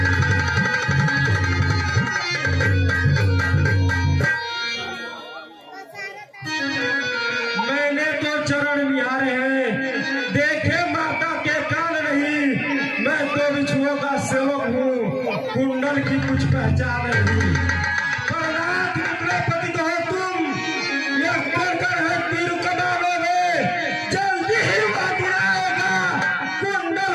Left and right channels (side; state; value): both; identical; correlation 1.00